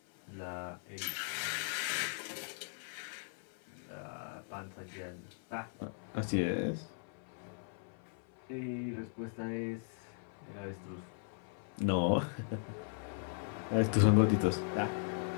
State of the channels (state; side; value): silent; right; 52 dB below the other